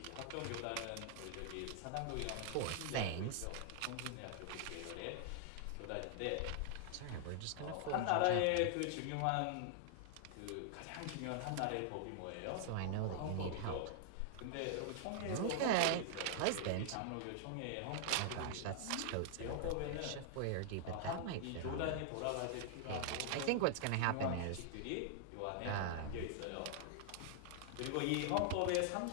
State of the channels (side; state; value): both; different; correlation -0.01